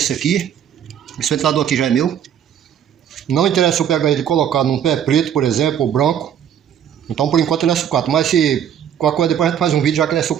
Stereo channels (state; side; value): quieter; left; 9.3 dB